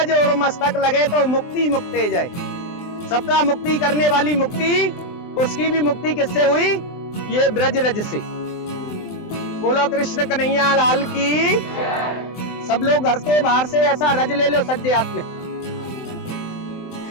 और मस्तक लगे तो मुक्ति मुक्ते जाए। सबका मुक्ति करने वाली मुक्ति, उसकी भी मुक्ति किससे हुई? ये ब्रज रज से। बोलो कृष्ण कन्हैया लाल की। सब लोग घर के बाहर से ऐसा रज ले लो, सज्जे हाथ में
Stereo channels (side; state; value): right; late; 23 ms